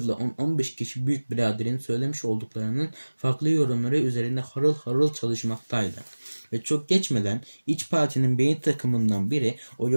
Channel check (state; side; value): inverted; both; correlation -1.00